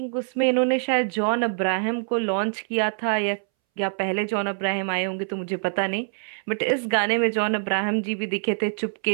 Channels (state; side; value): silent; left; 62 dB below the other